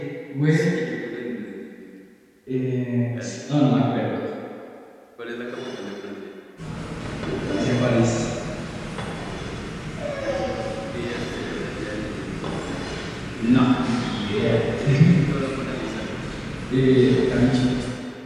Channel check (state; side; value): identical; both; correlation 1.00